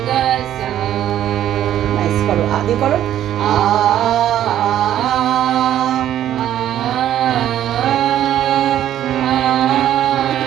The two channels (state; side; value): quieter; left; 11.6 dB